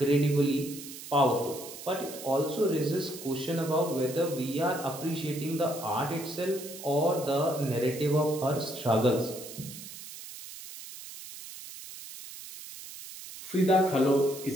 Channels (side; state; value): right; noise; hiss, 13 dB below the sound